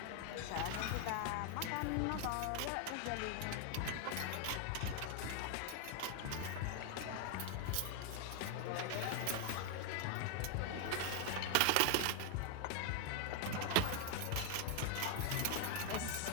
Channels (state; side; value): different; both; correlation 0.00